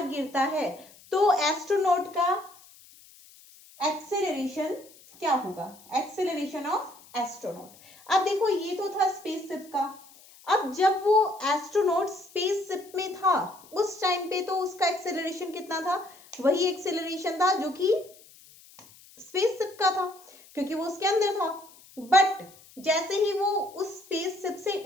गिरता है तो एस्ट्रोनॉट का एक्सेलरेशन क्या होगा, एक्सेलरेशन ऑफ एस्ट्रोनॉट। अब देखो ये तो था स्पेसशिप का, अब जब वो एस्ट्रोनॉट स्पेसशिप में था उस टाइम पे तो उसका एक्सेलरेशन कितना था, वही एक्सेलरेशन था जो कि स्पेसशिप का था क्योंकि वो उसके अंदर था। बट जैसे ही वो उस स्पेसशिप से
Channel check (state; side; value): noise; left; hiss, 24 dB below the sound